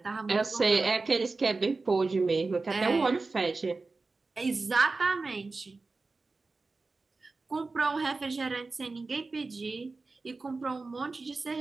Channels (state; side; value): quieter; left; 3.8 dB